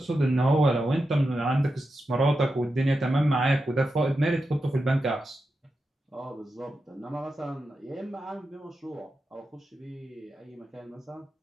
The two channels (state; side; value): normal; both; correlation 0.89